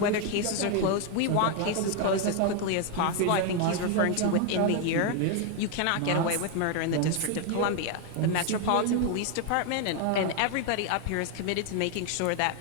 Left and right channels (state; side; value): different; both; correlation 0.01